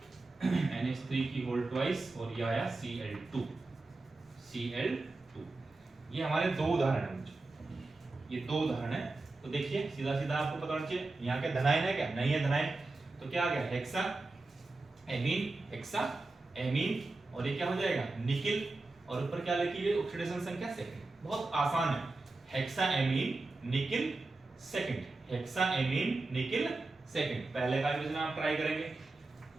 की होल ट्वाइस, और ये आया Cl2। ये हमारे 2 उदाहरण हैं, ये 2 उदाहरण है। तो देखिए सीधा आपको पता होना चाहिए यहाँ के धनायन है क्या? नहीं है धनायन। तो क्या आ गया? हेक्सा एमीन, और ये क्या हो जाएगा? निकिल, और ऊपर क्या लिखी है? ऑक्सीडेशन संख्या सेकंड। बहुत आसान है, hexa amine nickel second, hexa amine nickel second. पहले का भी आप ट्राई करेंगे,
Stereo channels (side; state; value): left; quieter; 3.3 dB